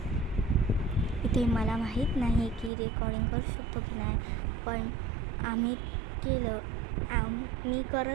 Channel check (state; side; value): drops out; left; at 2.7 s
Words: इथे मला माहीत नाही की रेकॉर्डिंग करू शकतो की नाही, पण मी